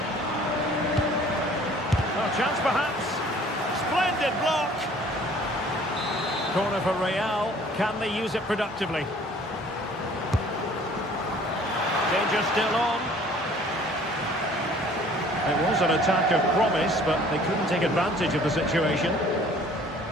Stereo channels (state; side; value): normal; both; correlation 0.53